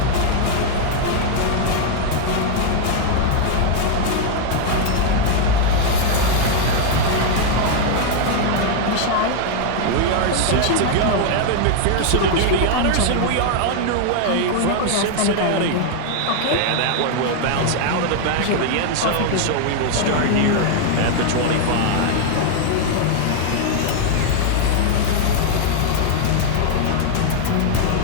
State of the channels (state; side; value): different; both; correlation 0.00